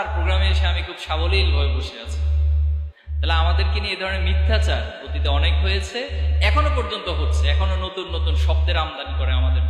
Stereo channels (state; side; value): identical; both; correlation 1.00